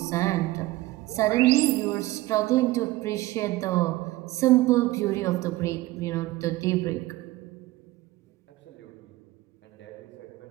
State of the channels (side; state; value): left; quieter; 18.2 dB